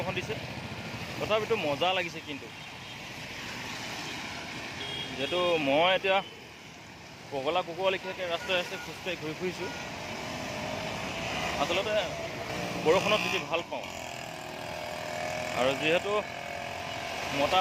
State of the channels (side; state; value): both; identical; correlation 1.00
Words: দিছে, তথাপিতো মজা লাগিছে। কিন্তু যিহেতু মই এতিয়া পগলা কুকুৰ লেখীয়াকৈ ৰাস্তাই ৰাস্তাই খোজকাঢ়ি ঘূৰি ফুৰিছোঁ, আচলতে বৰষুণত তিতি ভাল পাওঁ। আৰু যিহেতু মতা